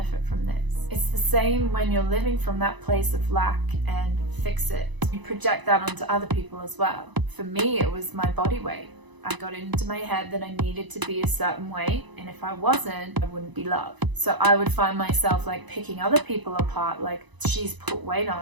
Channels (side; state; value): left; late; 1.0 ms